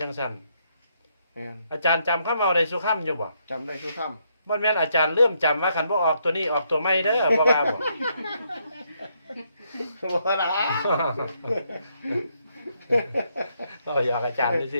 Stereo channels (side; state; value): both; inverted; correlation -0.75